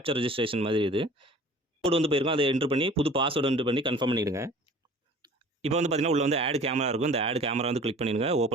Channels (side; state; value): both; normal; correlation 0.46